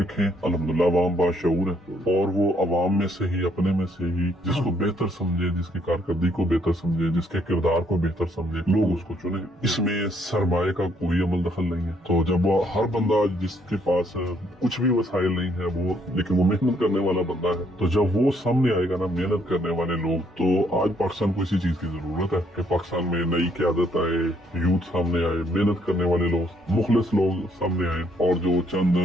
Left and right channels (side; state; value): both; normal; correlation 0.69